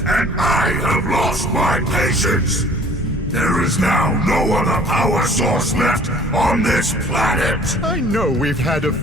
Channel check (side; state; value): both; normal; correlation 0.52